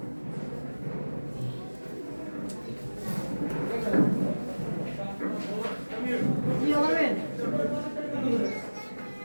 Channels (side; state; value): both; inverted; correlation -1.00